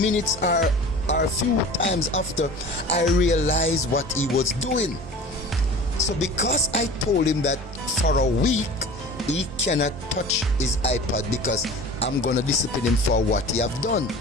or a few times after I realized what he was doing. So because I told him that for a week he cannot touch his iPad because I'm gonna discipline him for what he have done,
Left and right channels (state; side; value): normal; both; correlation 0.40